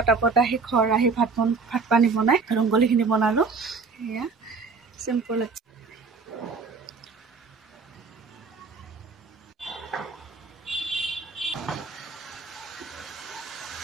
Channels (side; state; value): left; quieter; 4.7 dB